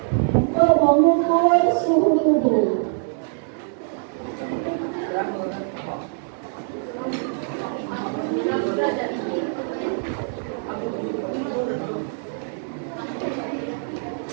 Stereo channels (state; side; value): silent; left; 60 dB below the other